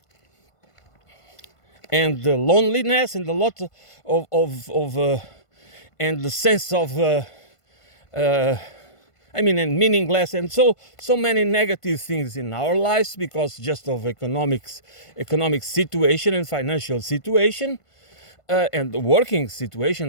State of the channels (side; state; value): right; late; 1.5 ms